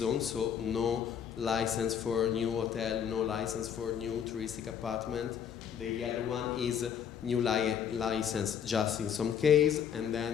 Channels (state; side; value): quieter; right; 8.3 dB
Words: so no license for new hotel, no license for new touristic apartment. The yellow one is new license just in some case, and